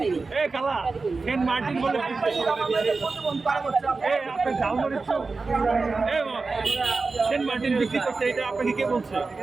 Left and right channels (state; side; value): quieter; left; 4.0 dB